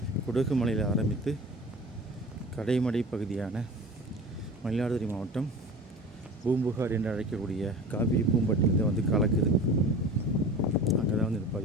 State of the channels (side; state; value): both; normal; correlation 0.37